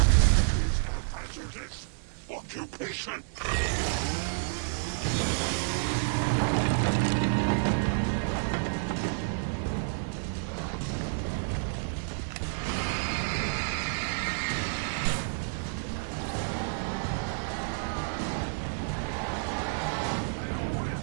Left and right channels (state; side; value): silent; left; digital silence